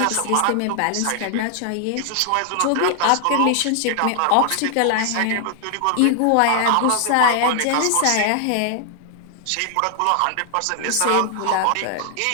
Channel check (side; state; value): both; different; correlation 0.00